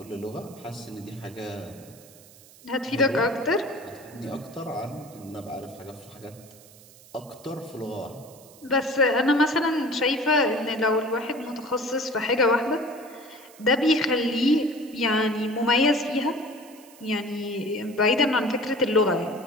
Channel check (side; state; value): right; noise; hiss, 23 dB below the sound